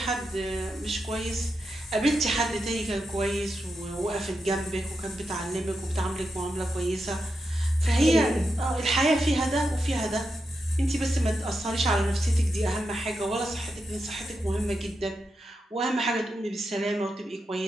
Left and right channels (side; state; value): both; normal; correlation 0.87